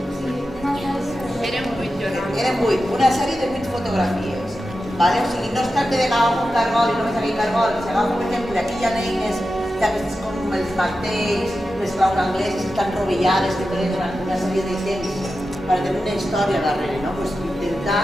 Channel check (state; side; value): normal; both; correlation 0.91